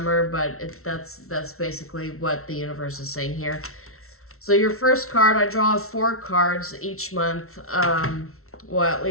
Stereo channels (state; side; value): late; right; 0.63 ms